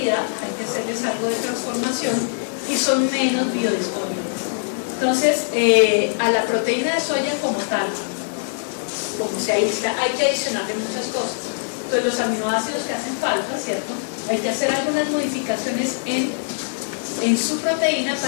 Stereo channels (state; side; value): silent; right; 56 dB below the other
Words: hay que hacerles algo de transformación, y son menos biodisponibles. Entonces a la proteína de soya como tal, como se aísla, hay que adicionarle muchas cosas. Entonces los aminoácidos que hacen falta, ¿cierto? Hay que hacer algunas modificaciones en en su proteína